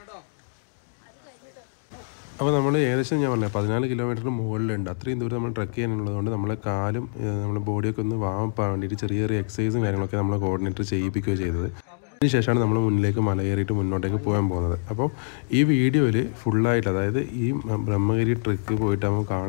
അപ്പോൾ നമ്മൾ ഏകദേശം ഞാൻ പറഞ്ഞത് 14 കിലോമീറ്ററിന് മുകളിലുണ്ട്. അത്രയും ദൂരം നമ്മൾ ട്രക്ക് ചെയ്യാനുള്ളതുകൊണ്ട് നമ്മളെ കാലും നമ്മുടെ ബോഡിയൊക്കെ ഒന്ന് വാമപ്പാൻ വേണ്ടിയിട്ട് ചെറിയ ചെറിയ എക്സസൈസും കാര്യങ്ങളൊക്കെ നമ്മൾ കോർഡിനേറ്റർ ചെയ്യിപ്പിക്കുകയോ ചെയ്തത്. അതിനുശേഷമാണ് നമ്മൾ മുന്നിലേക്ക് മല കയറിയിട്ട് മുന്നോട്ടേക്ക് പോകാൻ പോകുന്നത്. അപ്പോൾ ഈ വീഡിയോയിൽ ഫുള്ളായിട്ട്, അതായത് ഈ ബ്രഹ്മഗിരി ട്രക്ക് പോയിട്ട് നമുക്ക്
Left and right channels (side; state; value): right; silent; digital silence